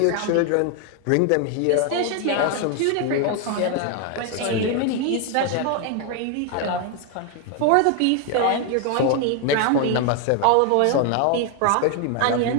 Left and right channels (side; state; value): both; different; correlation 0.01